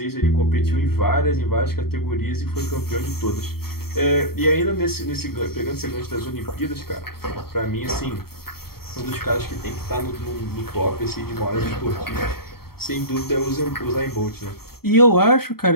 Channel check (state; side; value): late; right; 0.95 ms